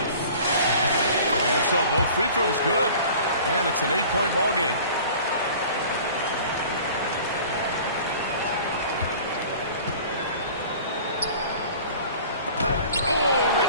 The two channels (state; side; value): inverted; both; correlation -0.45